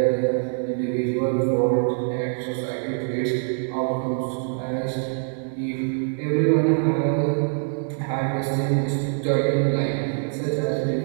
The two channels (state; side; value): silent; left; 61 dB below the other